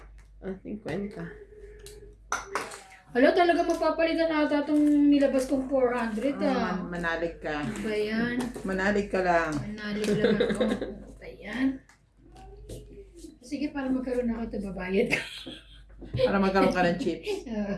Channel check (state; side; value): identical; both; correlation 1.00